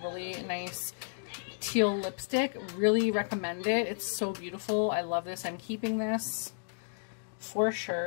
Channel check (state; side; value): silent; right; digital silence